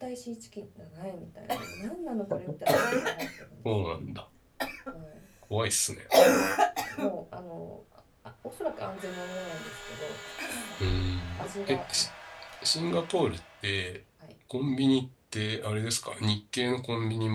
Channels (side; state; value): both; identical; correlation 1.00